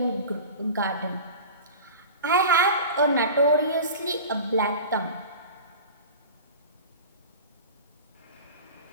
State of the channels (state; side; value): inverted; both; correlation -0.35